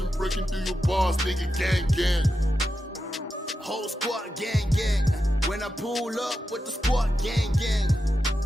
breaking through your bars, nigga, gang. Whole squad, gang. When I pull up with the squad, gang.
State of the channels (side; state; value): both; normal; correlation 0.89